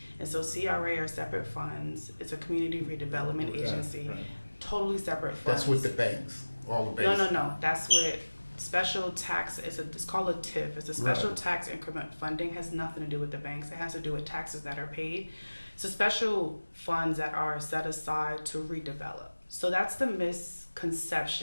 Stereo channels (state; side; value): inverted; both; correlation -1.00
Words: And so CRA are separate funds. It's a community redevelopment agency, right. Totally separate funds. That's with the banks, all the banks? No. That's with special tax. It's called a TIF. It's a special tax increment funding. Has nothing to do with the banks. It has to do with taxes that are paid. So special funds that are set aside to redevelop. So that's the